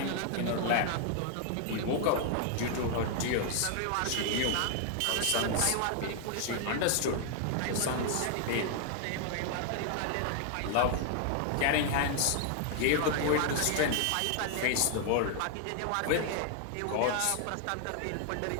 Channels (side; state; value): both; different; correlation 0.00